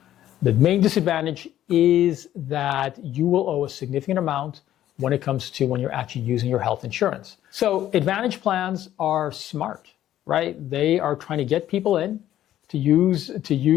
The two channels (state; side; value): quieter; right; 12.4 dB